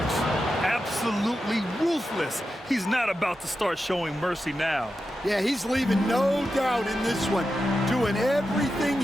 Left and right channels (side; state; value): both; normal; correlation 0.90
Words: Absolutely ruthless. He's not about to start showing mercy now. Yeah, he's leaving no doubt in this one. Doing everything